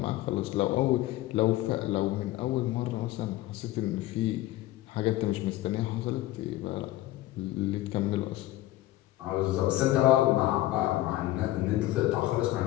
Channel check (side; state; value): right; quieter; 15.9 dB